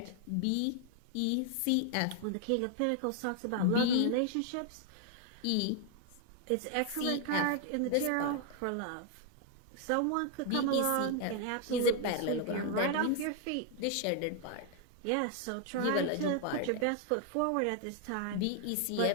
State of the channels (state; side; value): different; both; correlation 0.00